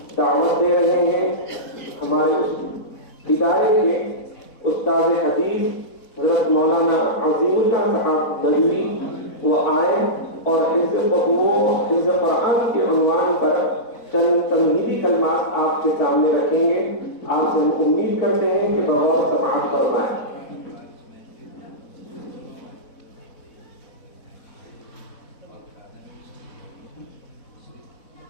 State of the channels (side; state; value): right; late; 4.1 ms